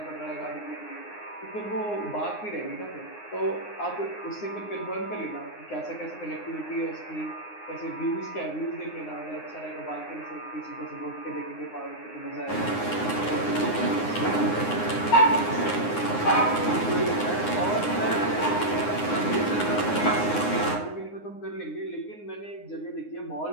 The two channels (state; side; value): late; right; 9.7 ms